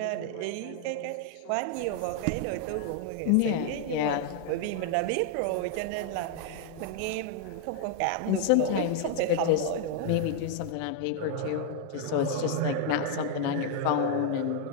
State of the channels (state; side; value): different; both; correlation 0.00